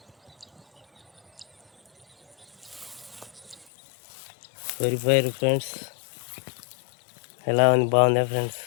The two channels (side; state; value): right; drops out; at 3.7 s